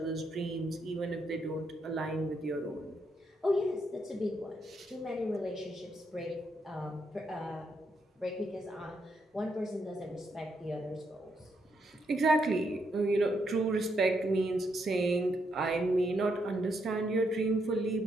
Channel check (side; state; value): both; normal; correlation 0.78